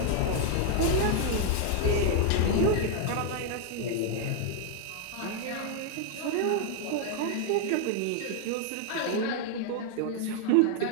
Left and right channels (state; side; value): different; both; correlation 0.00